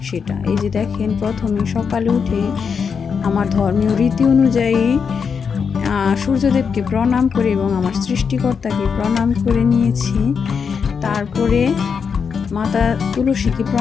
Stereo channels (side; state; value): right; quieter; 6.2 dB